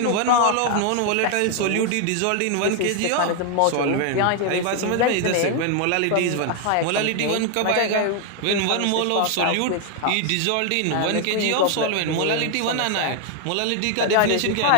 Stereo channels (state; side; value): different; both; correlation 0.00